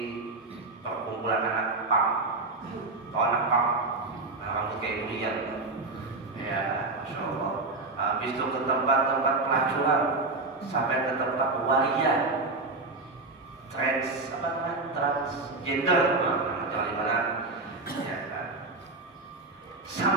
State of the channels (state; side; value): quieter; left; 3.4 dB